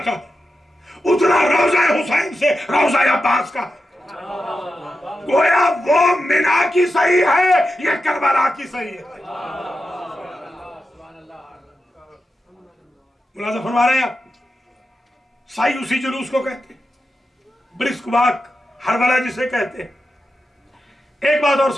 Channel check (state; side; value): normal; both; correlation 0.90